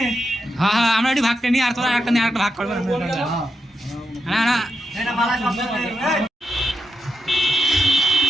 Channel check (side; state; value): both; normal; correlation 0.85